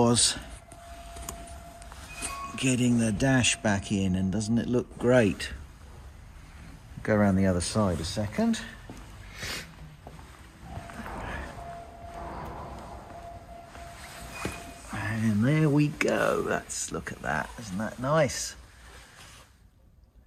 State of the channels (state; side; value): identical; both; correlation 1.00